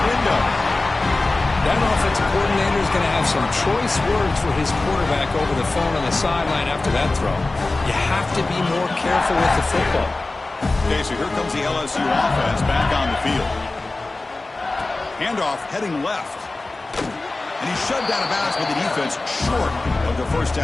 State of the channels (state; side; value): quieter; right; 3.2 dB